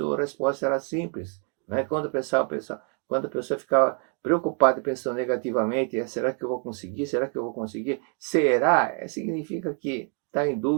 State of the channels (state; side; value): quieter; left; 39.8 dB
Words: a resposta era simples. Né? Quando a pessoa ficava preocupada e pensando negativamente, será que eu vou conseguir? Será que eu vou conseguir? Será? Significa que está em